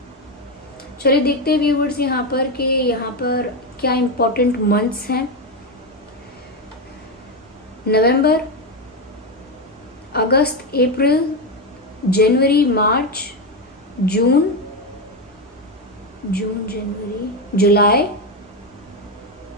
चलिए देखते हैं व्यूवर्स यहाँ पर कि यहाँ पर क्या इंपॉर्टेंट मंथ्स हैं। नवंबर, अगस्त, अप्रैल, जनवरी, मार्च, जून, जनवरी, जुलाई,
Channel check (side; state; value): both; normal; correlation 0.11